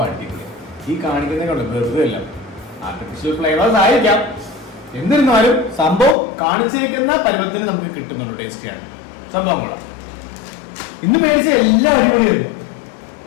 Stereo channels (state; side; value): drops out; right; at 6.2 s